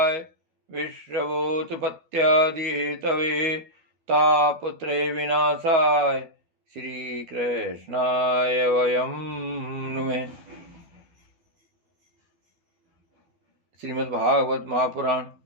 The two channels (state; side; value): late; left; 12 ms